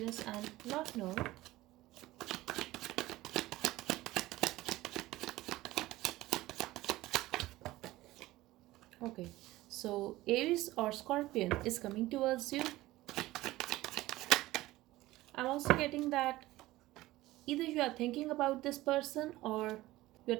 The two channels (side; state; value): left; quieter; 17.5 dB